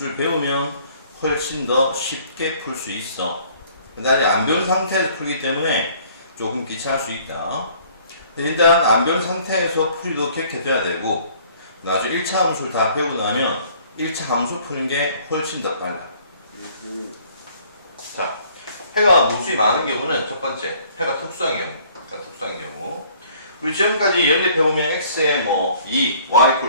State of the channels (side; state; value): both; inverted; correlation -0.57